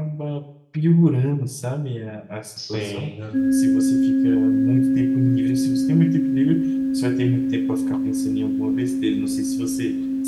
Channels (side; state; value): both; identical; correlation 1.00